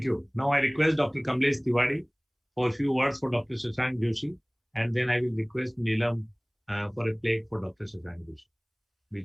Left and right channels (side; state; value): both; identical; correlation 1.00